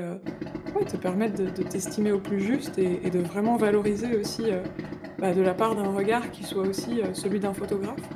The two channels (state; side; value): identical; both; correlation 1.00